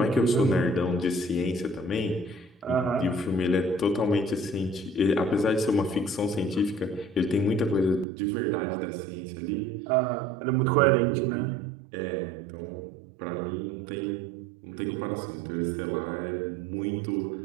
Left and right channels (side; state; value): left; drops out; at 8.1 s